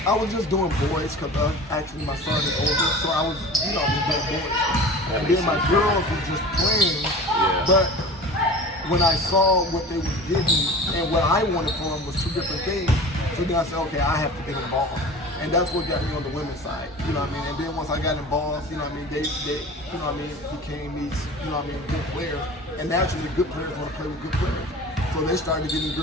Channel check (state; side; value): normal; both; correlation 0.38